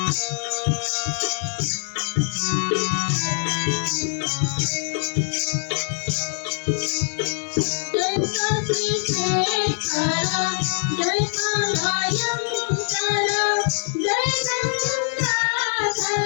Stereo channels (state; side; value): silent; right; digital silence